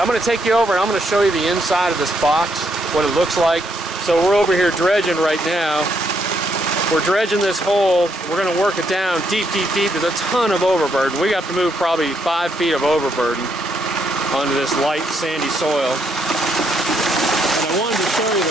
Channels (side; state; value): both; normal; correlation 0.75